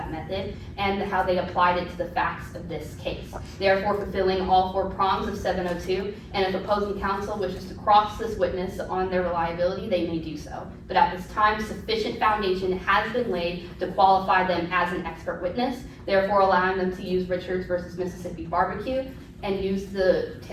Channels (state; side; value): identical; both; correlation 1.00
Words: method, and how they applied it to the facts of this case. Therefore, fulfilling all four prongs of 702, and if opposing counsel wishes to cross this witness on their reliability, they may do so. But at this time, sufficient foundation has been laid to qualify them as an expert witness, therefore allowing them to use Richards versus Mississippi Barbecue and use the